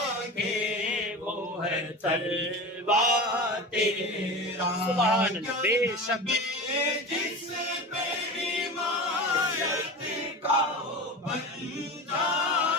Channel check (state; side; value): normal; both; correlation 0.29